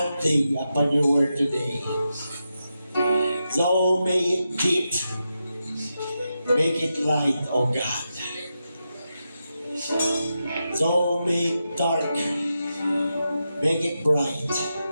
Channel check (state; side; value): inverted; both; correlation -0.88